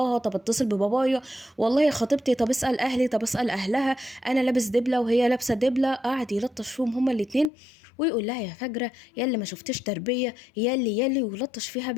طب اتصل ببابايا، والله خطيبتي، طب اسال اهلي، طب اسال اهلها، انا لابس دبله وهي لابسه دبله. قعد يلطش فيهم هما الاتنين ويقول لها يا فجره، يا اللي ما شفتش تربيه، يا اللي ويلطش فيها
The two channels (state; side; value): drops out; right; at 7.5 s